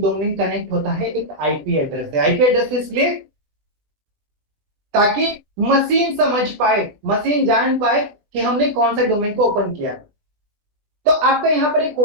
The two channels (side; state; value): left; late; 20 ms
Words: डोमेन कनेक्ट होता है एक आईपी एड्रेस से। आईपी एड्रेस इसलिए ताकि मशीन समझ पाए, मशीन जान पाए कि हमने कौन सा डोमेन को ओपन किया। तो आपका यहाँ पर एक